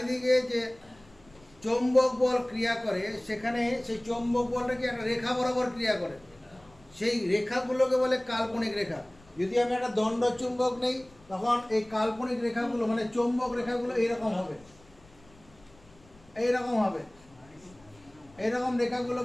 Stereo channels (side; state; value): left; noise; rumble, 27 dB below the sound